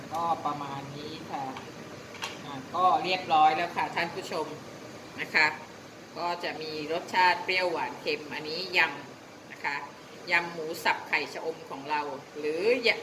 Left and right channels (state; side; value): identical; both; correlation 1.00